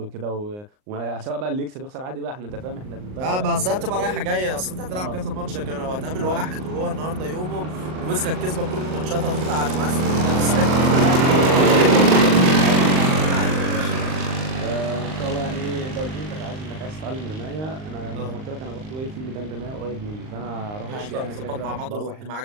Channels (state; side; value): late; left; 38 ms